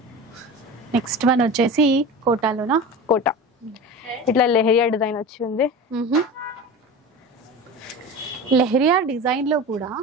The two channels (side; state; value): both; normal; correlation 0.31